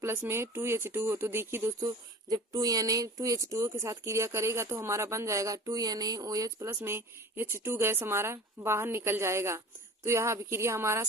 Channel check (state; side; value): normal; both; correlation 0.39